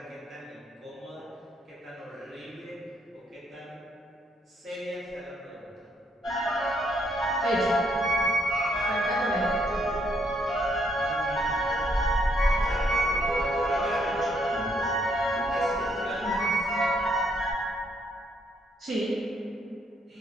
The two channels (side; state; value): both; normal; correlation 0.72